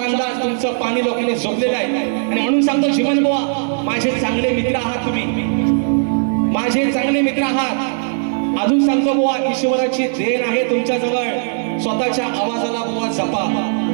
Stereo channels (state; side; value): silent; left; digital silence